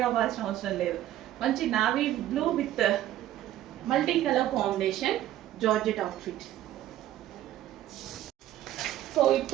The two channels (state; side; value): quieter; left; 13.1 dB